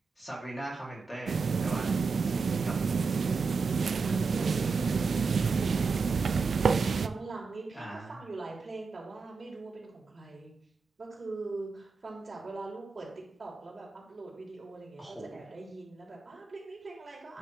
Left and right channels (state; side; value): quieter; left; 4.7 dB